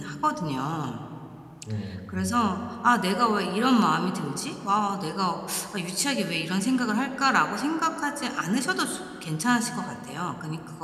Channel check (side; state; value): both; identical; correlation 1.00